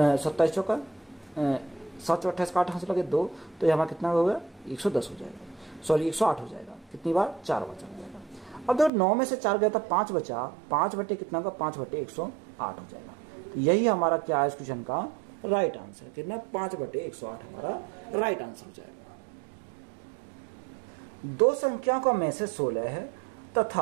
27 चौका 7 चौका 28 का 8 हाथ लगे 2, तो हमारा कितना हो गया 110 हो जाएगा, सॉरी 108 हो जाएगा। कितनी बार 4 बार चल जाएगा। अब देखो 9 में से 4 गया था 5 बचा, 5 बटे कितना होगा 5/108 हो जाएगा। तो यही हमारा क्या है इस क्वेश्चन का राइट आंसर। कितना 5/108 हमारा राइट आंसर हो जाएगा। दो संख्याओं का में से 16 है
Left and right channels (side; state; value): left; drops out; at 8.9 s